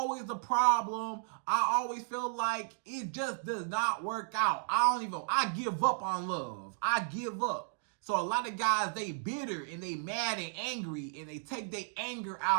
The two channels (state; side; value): silent; left; digital silence